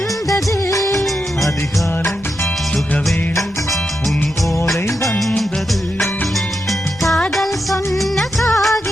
அதிகாலை சுகவேளை உன் ஓலை வந்தது. காதல் சொன்ன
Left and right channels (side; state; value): both; normal; correlation 0.86